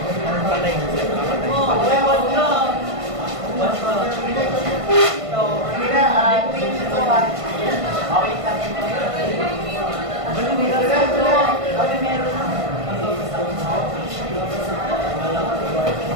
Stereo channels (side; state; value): left; late; 1.5 ms